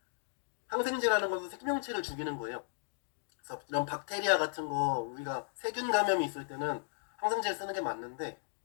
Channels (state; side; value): silent; right; digital silence